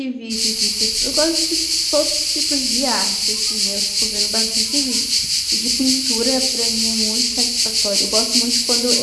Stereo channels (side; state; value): both; identical; correlation 1.00